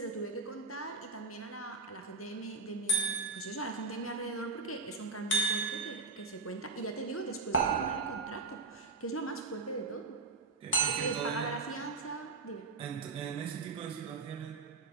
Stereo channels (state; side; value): quieter; left; 3.8 dB